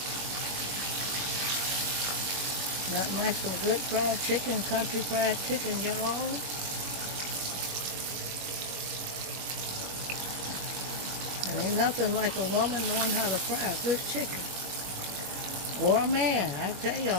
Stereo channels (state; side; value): late; left; 21 ms